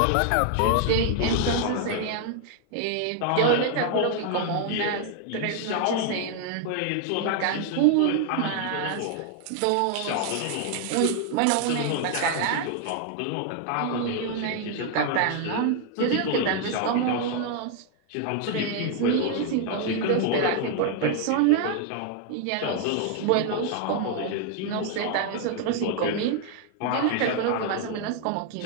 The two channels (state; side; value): different; both; correlation 0.00